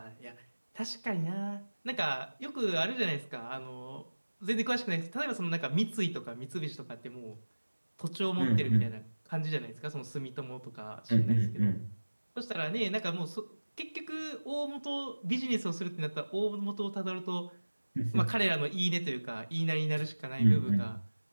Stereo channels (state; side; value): inverted; both; correlation -1.00